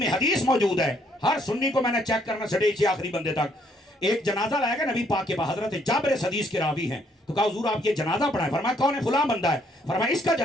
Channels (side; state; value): both; normal; correlation 0.68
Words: حدیث موجود ہے، ہر سنی کو میں نے چیک کرنا چھڑے سے آخری بندے تک. ایک جنازہ لائے گا نبی پاک کے پاس، حضرت جابر اس حدیث کے راوی ہیں. تو کہا حضور آپ یہ جنازہ پڑھائیں. فرمایا کون ہے؟ فلاں بندہ ہے. فرمایا اس کا